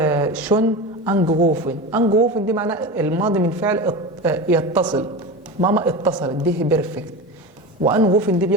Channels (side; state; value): both; normal; correlation 0.26